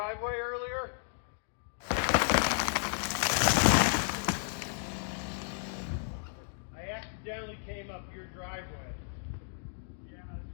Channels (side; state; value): right; silent; digital silence